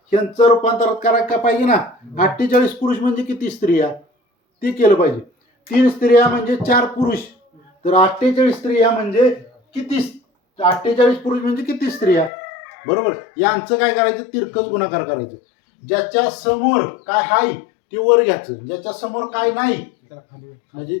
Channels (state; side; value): drops out; right; at 12.3 s